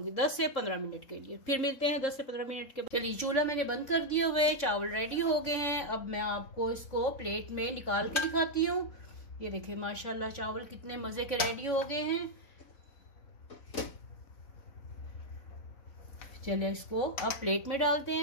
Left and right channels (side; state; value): right; late; 4.0 ms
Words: 10 से 15 मिनट के लिए। फिर मिलते हैं 10 से 15 मिनट के बाद। चलिए चूल्हा मैंने बंद कर दिया हुआ है, चावल रेडी हो गए हैं। अब मैं आपको इसको प्लेट में निकाल के दिखाती हूँ। ये देखिए माशाल्लाह चावल कितने मजे के रेडी हो गए हैं। चलिए इसको अब प्लेट में डालते